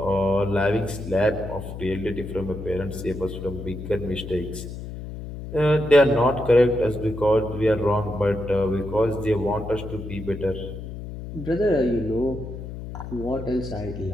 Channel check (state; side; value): noise; left; hum, 9 dB below the sound